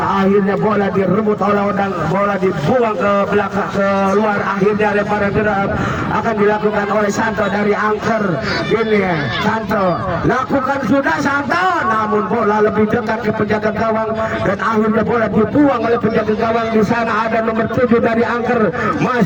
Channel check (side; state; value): both; identical; correlation 1.00